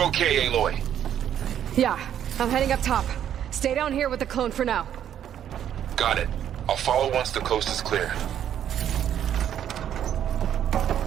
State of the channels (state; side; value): quieter; left; 10.0 dB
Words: okay, Aloy? Yeah, I'm heading up top. Stay down here with the clone for now. Got it. I'll follow once the coast is clear.